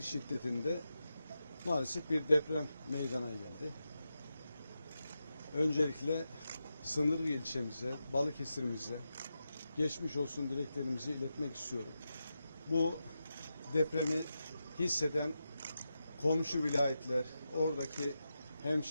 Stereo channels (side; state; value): both; inverted; correlation -0.89